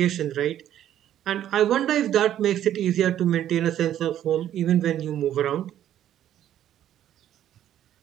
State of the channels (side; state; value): left; quieter; 11.3 dB